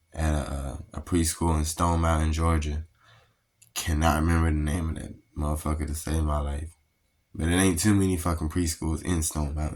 at a preschool in Stone Mountain, Georgia. Cannot remember the name of that motherfucker to save my life. But it ain't too many fucking preschools in Stone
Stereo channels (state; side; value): identical; both; correlation 1.00